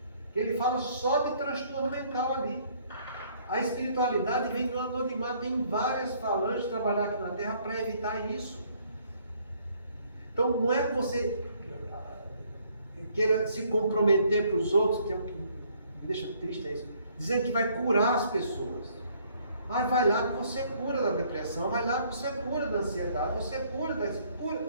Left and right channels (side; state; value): both; inverted; correlation -0.64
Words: Ele fala só de transtorno mental ali. A espiritualidade vem do anonimato, tem várias falanges de trabalhar aqui na Terra para evitar isso. Então não é que você queira se comprometer para os outros, que é o que me deixa triste, é isso, dizendo que vai curar as pessoas. Mas vai lá que você cura da depressão, vai lá que você cura da ansiedade, você cura da...